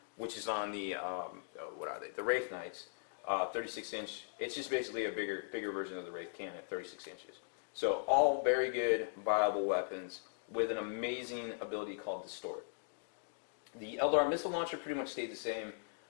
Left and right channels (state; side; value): silent; right; digital silence